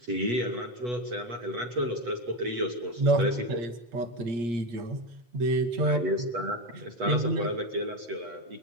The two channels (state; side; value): late; left; 8.2 ms